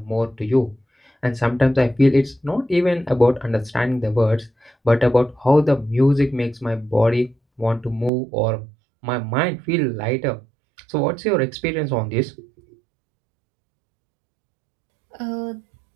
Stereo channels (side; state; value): left; drops out; at 8.1 s